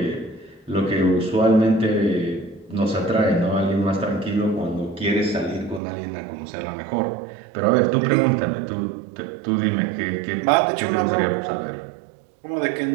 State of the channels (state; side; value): drops out; left; at 5.8 s